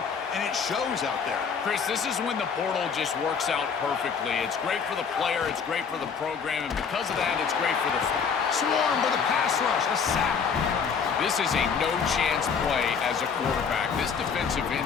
and it shows out there. Chris, this is when the portal just works out perfectly. It's great for the player, it's great for the program, and because of that, it's great for the swarm with a pass rush, a sack. This is a no-chance play as a quarterback. This defensive end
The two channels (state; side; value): quieter; right; 6.2 dB